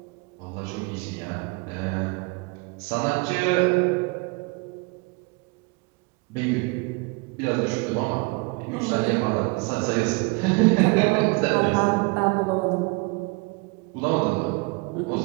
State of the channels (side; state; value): left; quieter; 29.0 dB